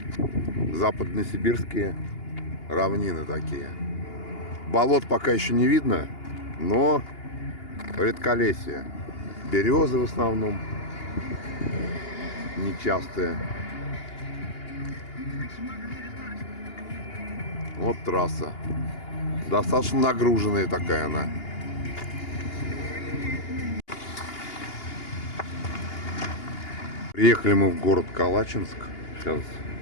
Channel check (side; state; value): right; late; 2.8 ms